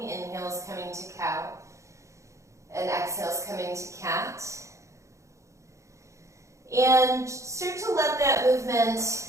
Inhales coming to cow. And exhales coming to cat. And start to let that movement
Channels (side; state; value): left; late; 0.15 ms